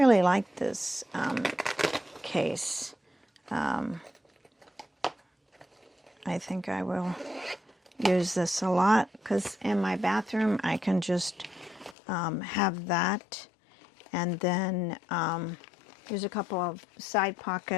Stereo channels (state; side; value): drops out; right; at 12.0 s